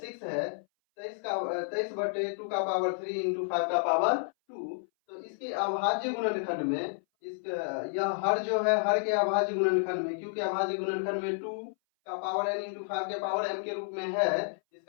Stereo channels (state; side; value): silent; right; 57 dB below the other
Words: है 23/2 का पावर 3 इंटू 5 का पावर 2। तो इसके अभाज्य गुणनखंड में यह हर जो है, हर के अभाज्य गुणनखंड में, क्योंकि अभाज्य गुणनखंड में 2 का पावर n इंटू 5 के पावर m के रूप में है,